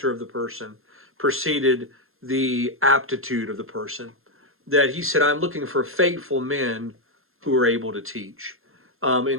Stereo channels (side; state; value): left; late; 0.61 ms